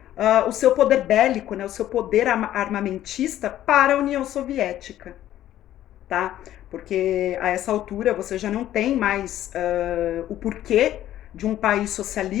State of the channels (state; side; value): quieter; right; 12.7 dB